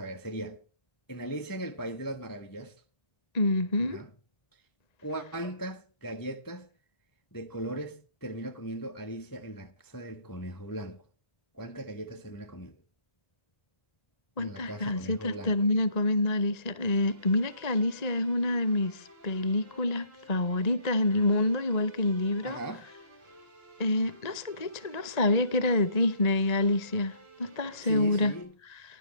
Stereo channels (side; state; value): right; late; 1.8 ms